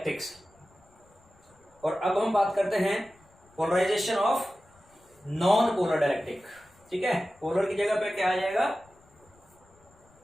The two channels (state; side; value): noise; left; rumble, 30 dB below the sound